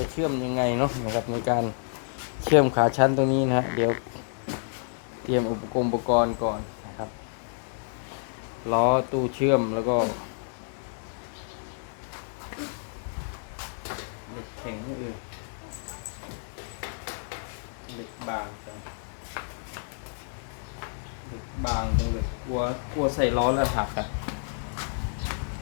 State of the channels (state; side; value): silent; right; 58 dB below the other